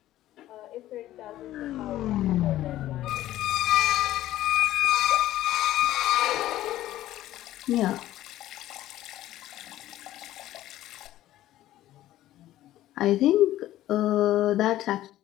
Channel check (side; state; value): right; quieter; 14.2 dB